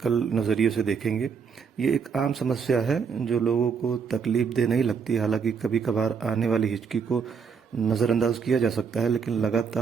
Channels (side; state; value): left; quieter; 6.1 dB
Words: नज़रिए से देखेंगे। ये एक आम समस्या है जो लोगों को तकलीफ दे नहीं लगती। हालांकि कभी कभार आने वाली हिचकी को नज़रअंदाज किया जा सकता है, लेकिन